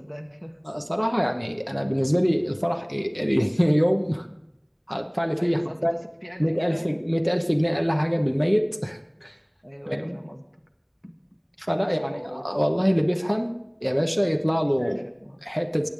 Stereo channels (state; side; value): identical; both; correlation 1.00